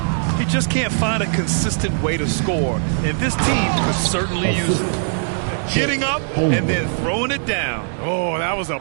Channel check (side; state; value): left; silent; 66 dB below the other